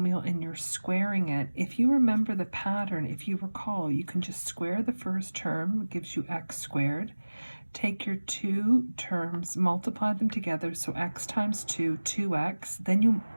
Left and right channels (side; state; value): both; inverted; correlation -1.00